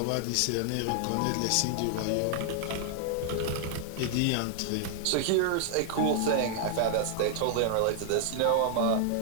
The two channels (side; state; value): both; different; correlation 0.00